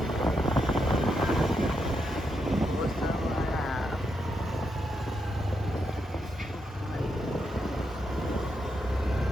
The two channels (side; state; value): both; normal; correlation 0.82